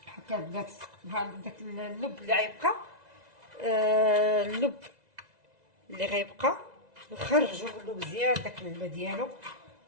هكا البنات. بحال داك اللب اللي غيبقى، اللب اللي غيبقى نخرجو منو مزيان داك الماء ديالو،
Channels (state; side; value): late; left; 2.0 ms